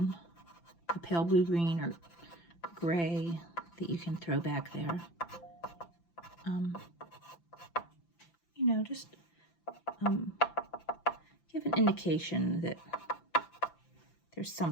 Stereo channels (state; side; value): late; right; 5.9 ms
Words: the pale blue-green or gray that you can throw back there. You know, just give an indication that there's